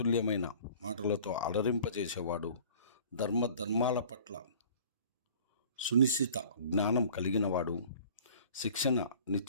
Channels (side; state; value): both; inverted; correlation -0.47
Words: మాటలతో అలరింపజేసేవాడు, ధర్మాల పట్ల సునిశ్చిత జ్ఞానం కలిగినవాడు,